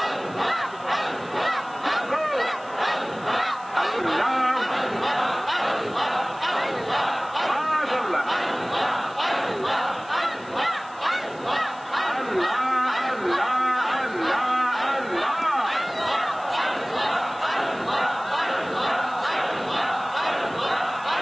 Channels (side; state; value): left; noise; hiss, 24 dB below the sound